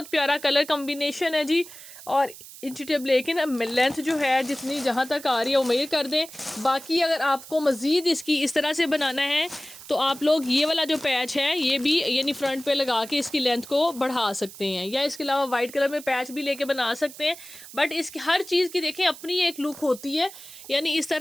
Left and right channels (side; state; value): right; noise; hiss, 16 dB below the sound